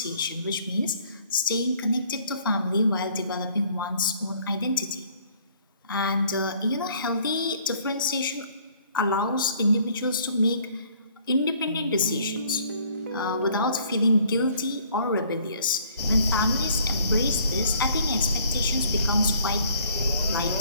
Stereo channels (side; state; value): both; inverted; correlation -0.59